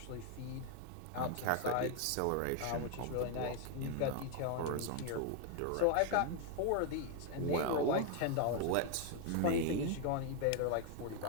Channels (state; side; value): different; both; correlation 0.01